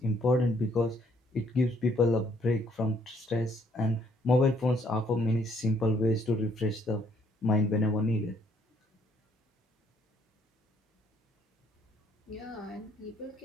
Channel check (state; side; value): normal; both; correlation 0.67